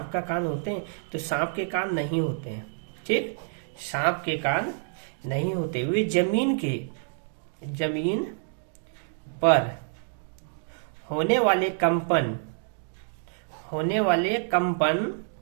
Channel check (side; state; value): left; silent; digital silence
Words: का कान होते हैं? तो सांप के कान नहीं होते हैं। ठीक, सांप के कान नहीं होते। वे जमीन पर होने वाले कंपन